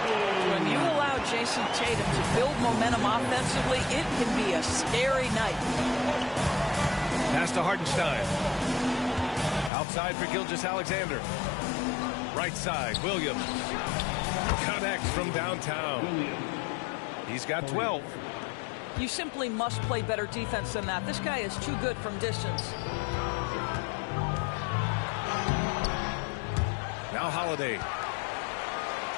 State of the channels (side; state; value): right; drops out; at 9.7 s